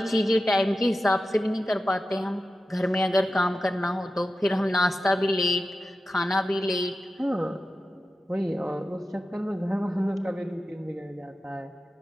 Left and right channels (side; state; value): both; normal; correlation 0.92